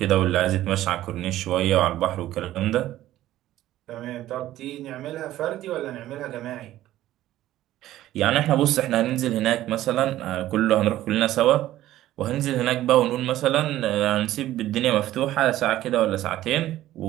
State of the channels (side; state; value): left; quieter; 14.2 dB